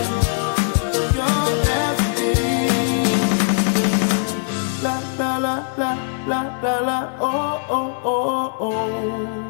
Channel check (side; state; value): right; silent; digital silence